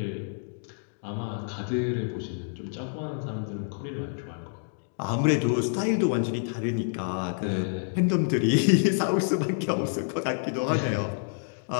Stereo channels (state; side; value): silent; right; digital silence